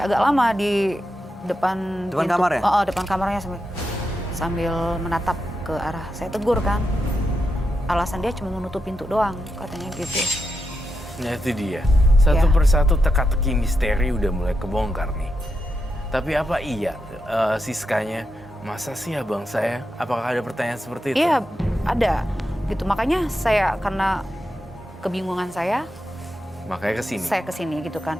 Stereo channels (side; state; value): both; normal; correlation 0.86